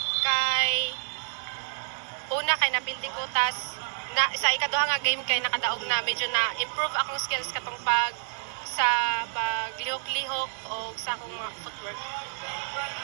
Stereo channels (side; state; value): left; silent; digital silence